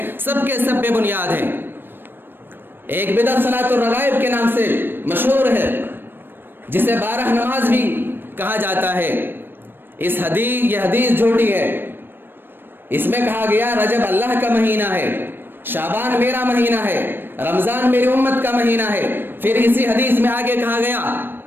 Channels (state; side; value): late; left; 0.097 ms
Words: سب کے سب بے بنیاد ہیں۔ ایک بدعت صلاۃ الرغائب کے نام سے مشہور ہے، جسے 12 نماز بھی کہا جاتا ہے۔ یہ حدیث جھوٹی ہے۔ اس میں کہا گیا رجب اللہ کا مہینہ ہے، شعبان میرا مہینہ ہے، رمضان میری امت کا مہینہ ہے۔ پھر اسی حدیث میں آگے کہا گیا